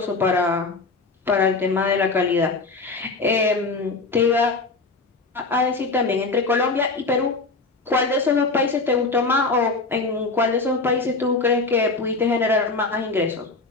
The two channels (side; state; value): right; quieter; 3.7 dB